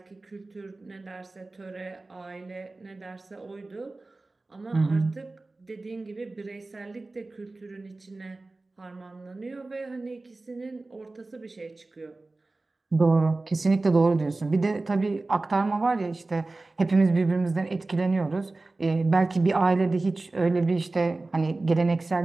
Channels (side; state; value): left; quieter; 3.2 dB